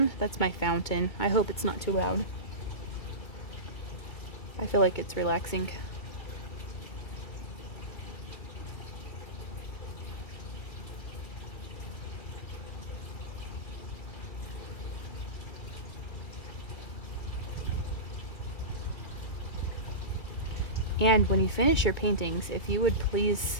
that's my fountain. I hope it's not too loud. I feel like it's relaxing. And when you finish your paintings, if you would please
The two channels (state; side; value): late; right; 2.2 ms